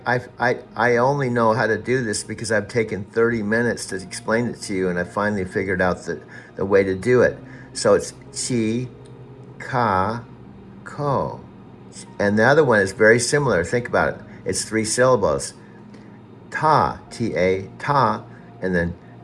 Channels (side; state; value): both; identical; correlation 1.00